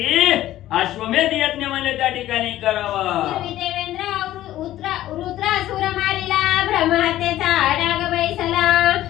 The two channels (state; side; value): quieter; right; 14.1 dB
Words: अश्वमेध यज्ञ म्हणजे त्या ठिकाणी करावा. देवेंद्र रुद्रासुर मारिला, ब्रह्महत्येचा डाग बैसला,